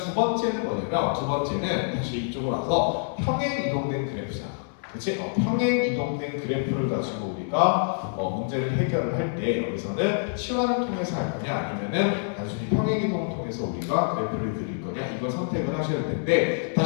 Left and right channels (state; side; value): silent; right; 60 dB below the other